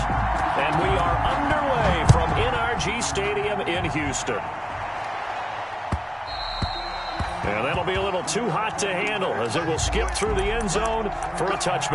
And we are underway from NRG Stadium in Houston. And that'll be a little too hot to handle as it will skip through the end zone for a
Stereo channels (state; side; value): identical; both; correlation 1.00